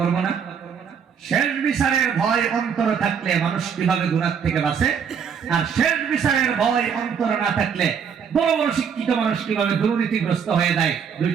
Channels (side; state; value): left; quieter; 7.1 dB